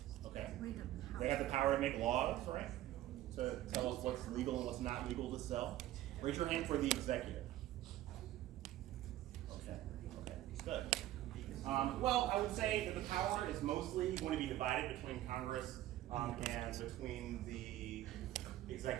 Okay. They have the power to make laws, right? To tell us what's legal and what's not legal to sell. Raise your hand for the executive. Okay. Good. Well, I would say that the power is mostly going to be divided between Congress and between the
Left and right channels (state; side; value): quieter; left; 14.2 dB